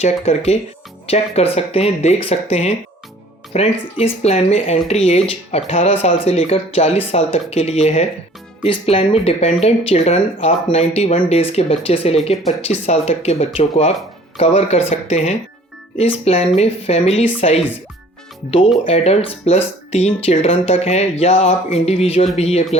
कर सकते हैं, देख सकते हैं। फ्रेंड्स, इस प्लान में एंट्री एज 18 साल से लेकर 40 साल तक के लिए है। इस प्लान में डिपेंडेंट चिल्ड्रन आप 91 डेज़ के बच्चे से लेकर 25 साल तक के बच्चों को आप कवर कर सकते हैं। इस प्लान में family size 2 adults plus 3 children तक है या आप इंडिविजुअल भी ये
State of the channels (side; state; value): both; normal; correlation 0.52